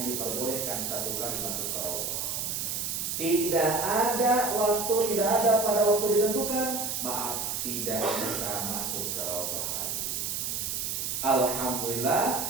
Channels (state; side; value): noise; right; hiss, 2 dB below the sound